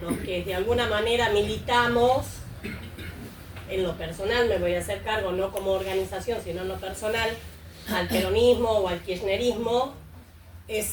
los que de alguna manera militamos. En lo personal me voy a hacer cargo, no como organización, sino en lo personal, al peronismo o al kirchnerismo.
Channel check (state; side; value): identical; both; correlation 1.00